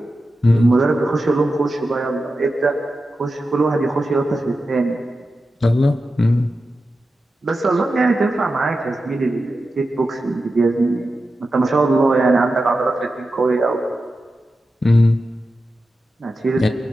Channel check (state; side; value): normal; both; correlation 0.91